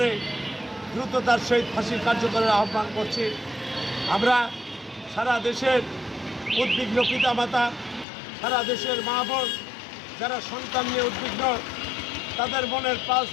দ্রুত তার সহিত ফাঁসি কার্যকরের আহ্বান করছি। আমরা সারা দেশের উদ্বিগ্ন পিতামাতা, সারা দেশের মা বোন যারা সন্তান নিয়ে উদ্বিগ্ন, তাদের মনের পাশ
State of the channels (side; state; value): right; drops out; at 8.1 s